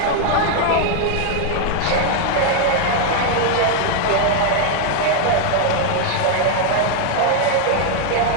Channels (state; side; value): different; both; correlation 0.00